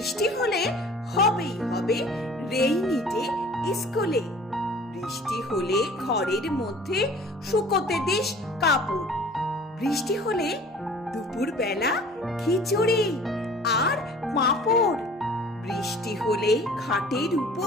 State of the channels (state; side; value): normal; both; correlation 0.47